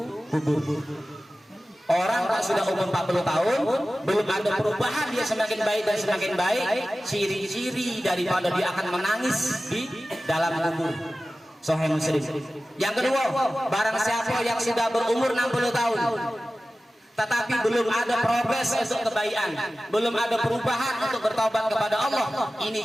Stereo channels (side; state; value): both; normal; correlation 0.96